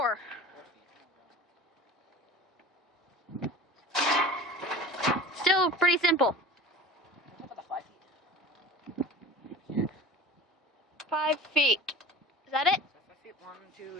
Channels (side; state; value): both; normal; correlation 0.37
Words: 4 feet. Still pretty simple. How about the 5 feet? 5 feet. Is that it? 5 feet. 1, 2,